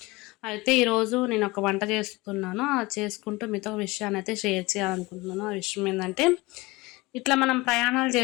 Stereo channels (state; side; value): quieter; right; 22.0 dB